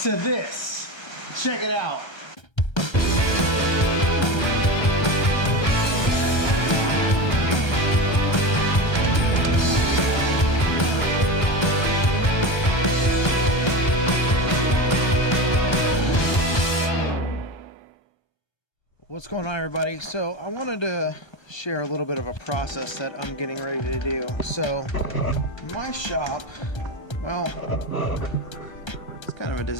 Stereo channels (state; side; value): late; right; 1.3 ms